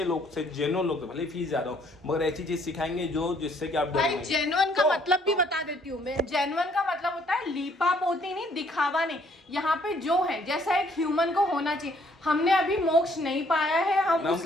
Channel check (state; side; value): normal; both; correlation 0.64